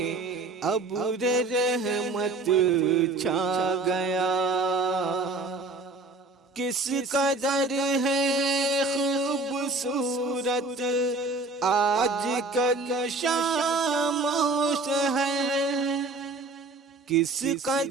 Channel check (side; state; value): left; quieter; 3.3 dB